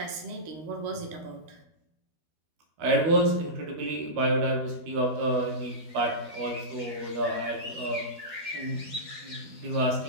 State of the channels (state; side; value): late; left; 12 ms